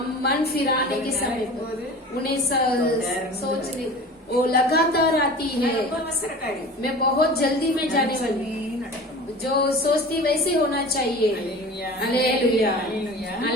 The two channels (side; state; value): both; normal; correlation 0.38